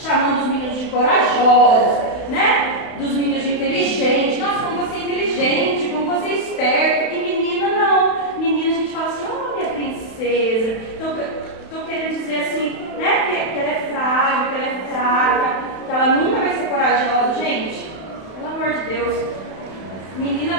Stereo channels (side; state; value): right; late; 31 ms